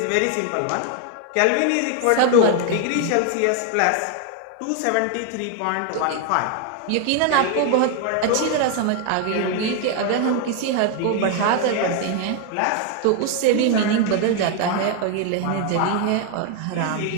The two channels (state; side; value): different; both; correlation 0.01